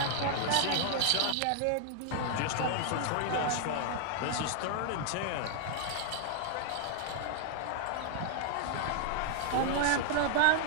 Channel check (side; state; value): both; different; correlation 0.00